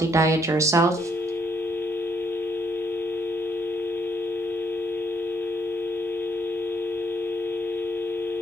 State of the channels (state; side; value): normal; both; correlation 0.70